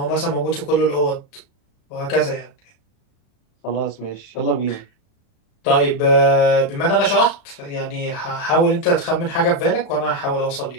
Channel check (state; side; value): late; right; 35 ms